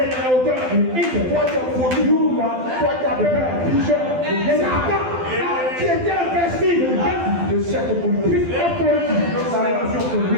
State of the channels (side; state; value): left; late; 12 ms